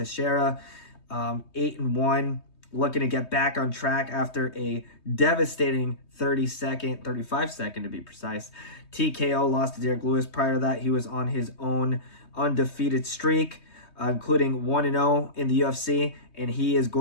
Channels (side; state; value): right; late; 3.2 ms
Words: 8-1. Looking to get back on track after a devastating 35 second to be precise, TKO loss to Diego Lopes. Prior to that, he was on his own undefeated streak, including 1-0 in the UFC, and he is